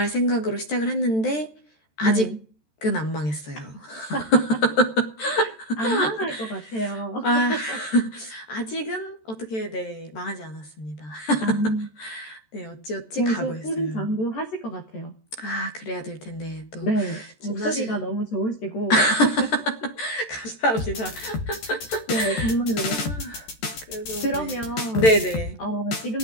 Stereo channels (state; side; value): late; right; 13 ms